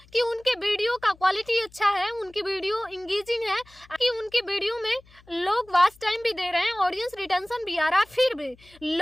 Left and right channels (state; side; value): noise; left; hum, 27 dB below the sound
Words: कि उनके वीडियो का क्वालिटी अच्छा है, उनकी वीडियो इंगेजिंग है, कि उनकी वीडियो में लोग वॉच टाइम भी दे रहे हैं, ऑडियंस रिटेंशन भी आ रहा है, फिर भी